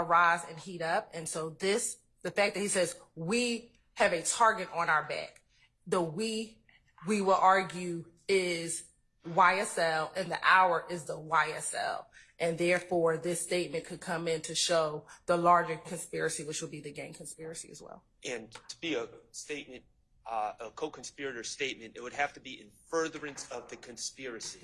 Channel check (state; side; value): identical; both; correlation 1.00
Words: and heat up. And so the fact that he says, we have a target on our back, the we will argue is YSL, and the our is the YSL. And therefore, this statement could come in to show the larger conspiracy, which would be the gang conspiracy as well. And to be a statement, a co-conspirator statement, it would have to be in furtherance of the conspiracy.